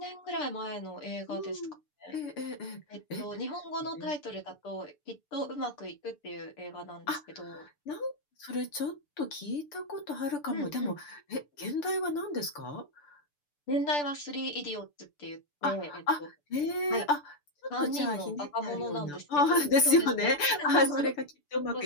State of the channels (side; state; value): right; late; 6.8 ms